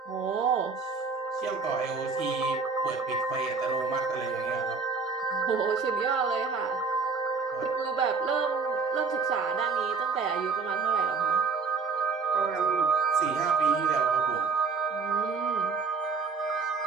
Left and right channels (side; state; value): left; quieter; 4.8 dB